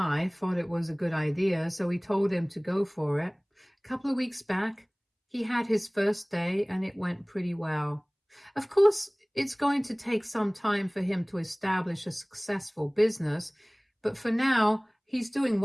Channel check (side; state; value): both; identical; correlation 1.00